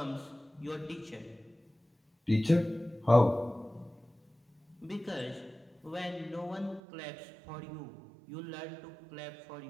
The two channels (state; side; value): drops out; left; at 6.8 s